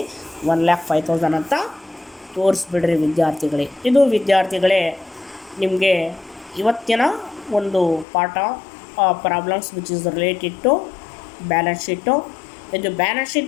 1,05,000 ಅಂತ ತೋರಿಸ್ಬಿಡ್ರಿ ವಿದ್ಯಾರ್ಥಿಗಳೇ. ಇದು ವಿದ್ಯಾರ್ಥಿಗಳೇ ನಿಮಗೆ ಇವತ್ತಿನ ಒಂದು ಪಾಠ, problems which is related to balance sheet. ಇದು ಬ್ಯಾಲೆನ್ಸ್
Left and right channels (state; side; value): drops out; right; at 8.1 s